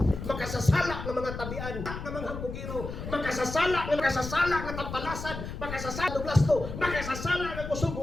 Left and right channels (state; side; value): noise; left; rumble, 8 dB below the sound